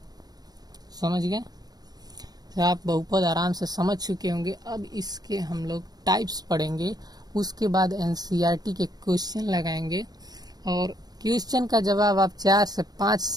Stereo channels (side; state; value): left; late; 0.19 ms